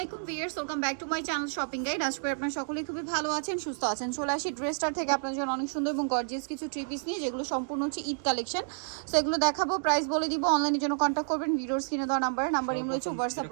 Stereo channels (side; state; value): left; silent; digital silence